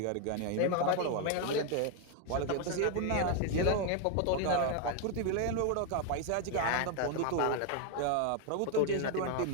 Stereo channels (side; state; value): both; different; correlation 0.01